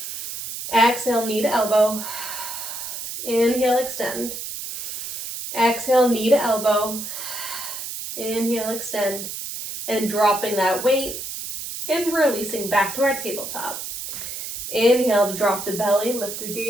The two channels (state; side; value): noise; right; hiss, 7 dB below the sound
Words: Exhale, knee to elbow. Inhale, extend. Exhale, knee to elbow. Inhale, extend. And dropping that weight and releasing back to our tabletop. Inhale to drop the belly, lift the